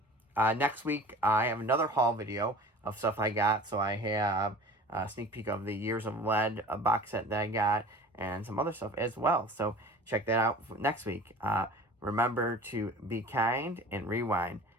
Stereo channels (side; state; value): both; normal; correlation 0.41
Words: Next week, I have another haul video of stuff I got. So I have a sneak peek of the Years of Lead, a box set that I got, and some other stuff as well. So check that out next week. Remember to be kind and rewind.